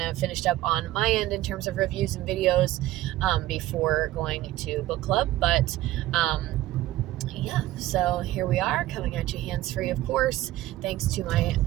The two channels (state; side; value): quieter; left; 15.6 dB